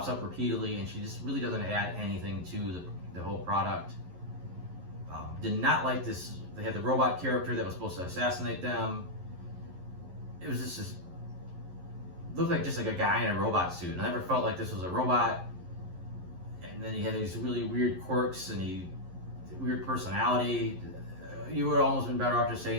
up repeatedly, and she just really doesn't add anything to the whole product. Did not like this. They had the robot character that was supposed to assassinate them. It was just looked like just like a guy in a robot suit. And I never felt like this was a robot. and then he had these really weird quirks and weird personality. You would almost been better off just saying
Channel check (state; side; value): late; left; 11 ms